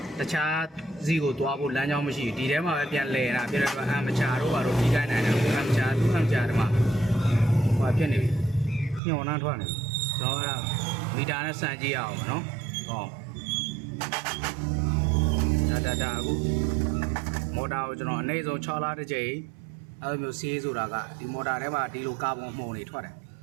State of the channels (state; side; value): drops out; left; at 9.0 s